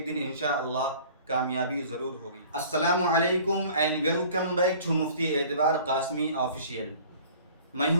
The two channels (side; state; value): both; inverted; correlation -0.48